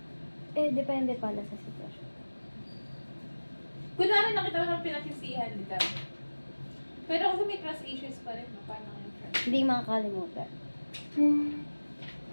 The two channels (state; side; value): inverted; both; correlation -1.00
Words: Depende pala sa sitwasyon. Kunwari nakita mo ng pinagsisihan dito. Pero kasi may trust issues pa rin, no? Paano yung trust? Hindi makakalimutan.